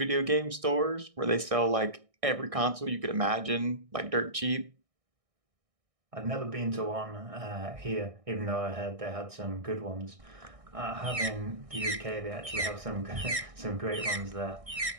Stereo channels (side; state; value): left; late; 1.6 ms